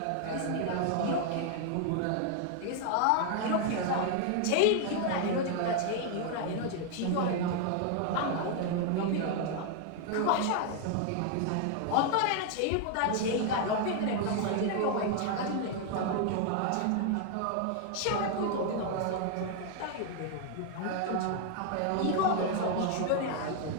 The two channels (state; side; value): different; both; correlation 0.00